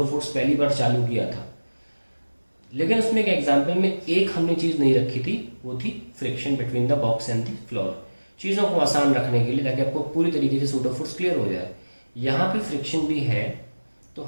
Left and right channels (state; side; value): inverted; both; correlation -1.00